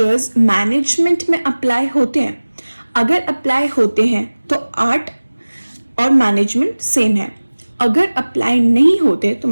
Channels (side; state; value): both; inverted; correlation -1.00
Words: मैनेजमेंट में अप्लाई होते हैं. अगर अप्लाई होते हैं तो आर्ट और मैनेजमेंट सेम है. अगर अप्लाई नहीं होते तो